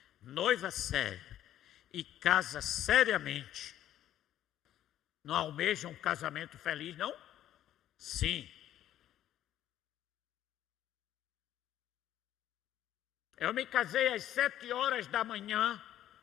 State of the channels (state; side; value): quieter; right; 12.0 dB